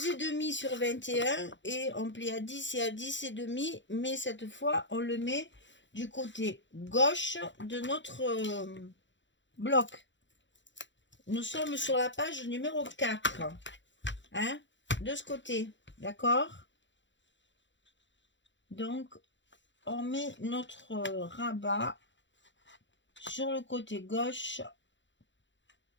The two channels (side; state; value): right; late; 0.54 ms